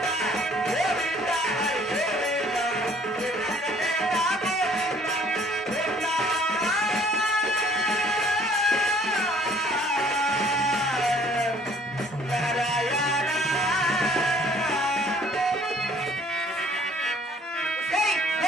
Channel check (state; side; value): normal; both; correlation 0.57